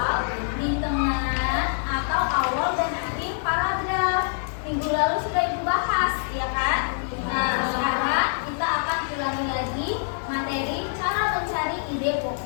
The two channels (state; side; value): silent; right; digital silence